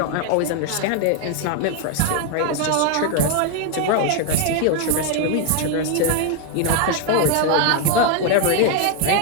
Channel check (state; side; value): different; both; correlation 0.01